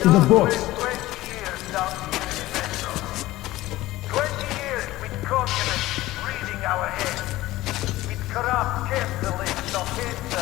the box. 20 years with communists reading our heads, with corrupt capitalists of pizza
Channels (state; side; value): quieter; right; 17.1 dB